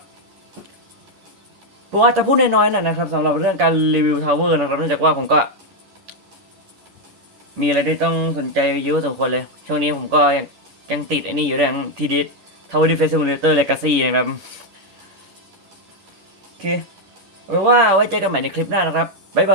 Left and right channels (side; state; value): left; late; 10 ms